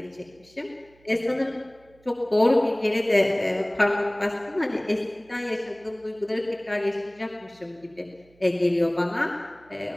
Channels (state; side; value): noise; right; hum, 30 dB below the sound